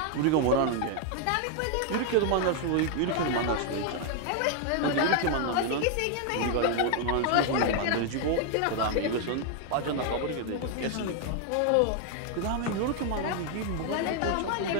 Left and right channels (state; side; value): different; both; correlation 0.00